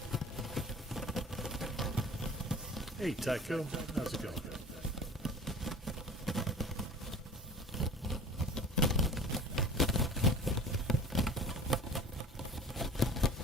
Hey, Tycho, how's it going?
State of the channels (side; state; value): both; normal; correlation 0.41